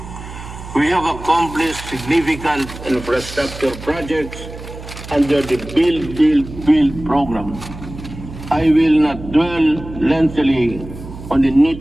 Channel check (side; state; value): right; noise; hum, 13 dB below the sound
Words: We have accomplished significant infrastructure projects under the Build program. I will not dwell lengthily on the